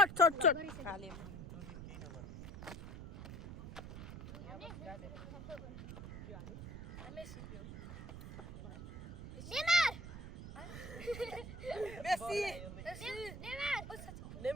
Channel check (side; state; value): right; noise; rumble, 10 dB below the sound